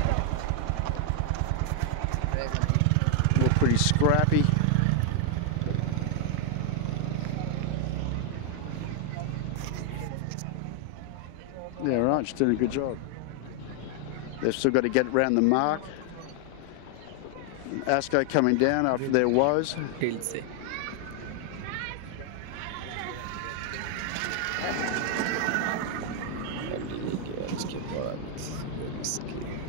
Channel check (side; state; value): both; different; correlation 0.00